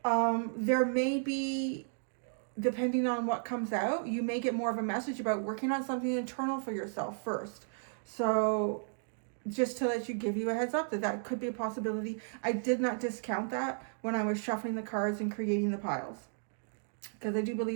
there may be, depending on what comes out, you may get more of a message about working on something internal for yourself first. So just to give you a heads up that could be a possibility. I did not discount that when I was shuffling the cards and creating the piles, because I do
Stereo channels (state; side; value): silent; left; digital silence